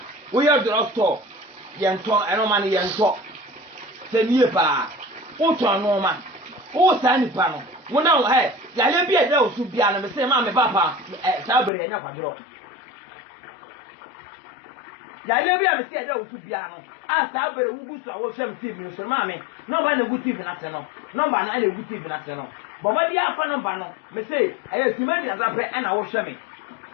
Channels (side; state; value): right; drops out; at 11.7 s